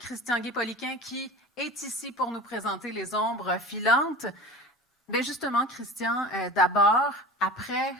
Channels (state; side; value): normal; both; correlation 0.36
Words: Guay-Poliquin qui est ici pour nous présenter Les ombres filantes. Bien justement, Christian, d'abord, après